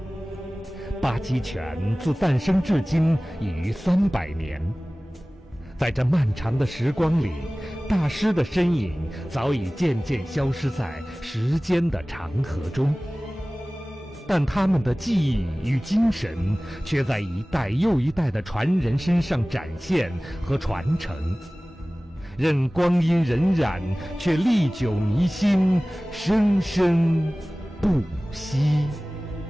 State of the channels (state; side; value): normal; both; correlation 0.98